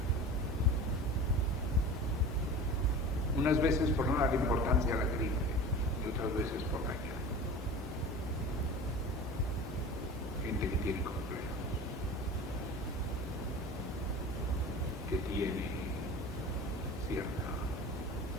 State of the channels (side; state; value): both; normal; correlation 0.36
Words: Unas veces por no dar importancia a la gripe y otras veces por dañar. Gente que tiene complejos, que tiene